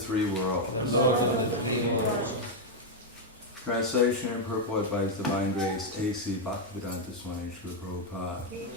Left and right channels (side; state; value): both; normal; correlation 0.00